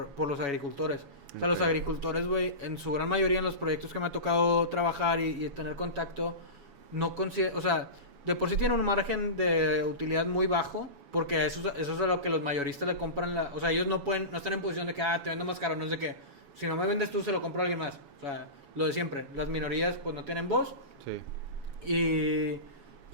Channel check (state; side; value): late; left; 7.1 ms